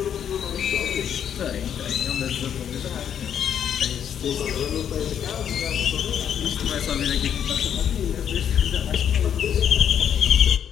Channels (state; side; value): quieter; right; 8.9 dB